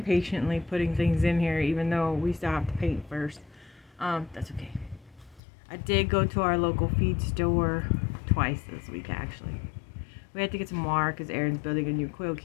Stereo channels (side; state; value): right; drops out; at 5.4 s